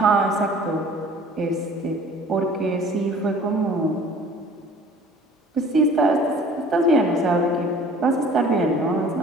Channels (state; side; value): normal; both; correlation 0.49